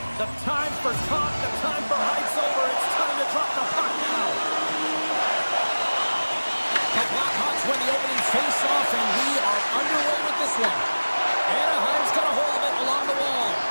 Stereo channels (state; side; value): inverted; both; correlation -1.00